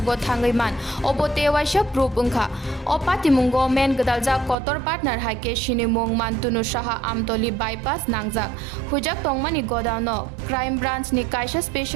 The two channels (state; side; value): drops out; left; at 4.5 s